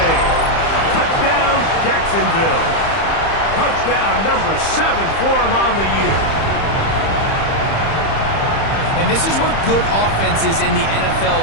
Touchdown, Jacksonville. Touchdown number 7 for him on the year. And this is what good offenses in the NFL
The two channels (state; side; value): late; right; 30 ms